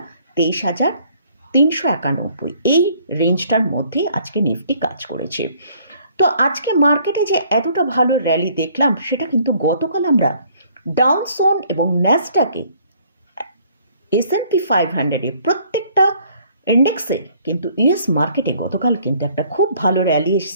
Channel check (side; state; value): both; inverted; correlation -0.61